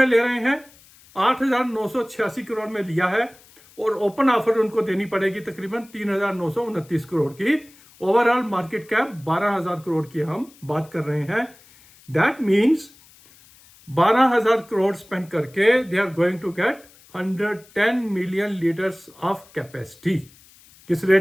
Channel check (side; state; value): left; noise; hiss, 26 dB below the sound